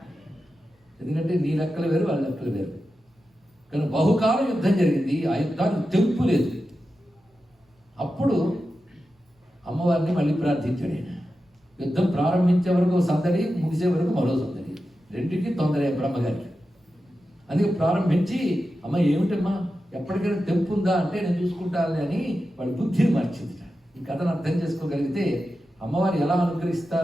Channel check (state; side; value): normal; both; correlation 0.91